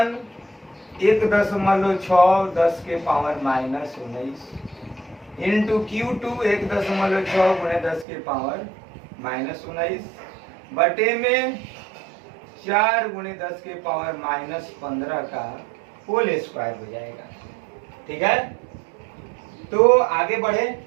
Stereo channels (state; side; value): drops out; left; at 8.1 s